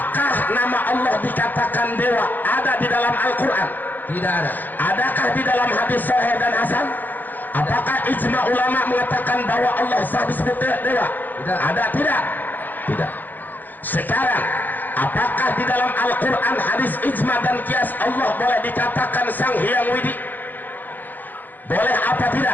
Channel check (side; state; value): right; late; 0.086 ms